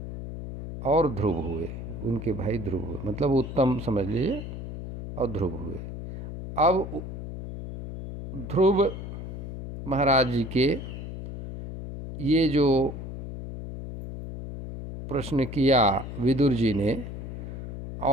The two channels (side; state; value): left; noise; hum, 8 dB below the sound